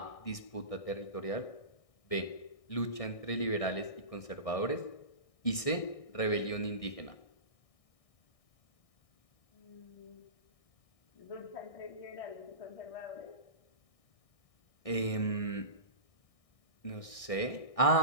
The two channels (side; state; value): right; late; 1.6 ms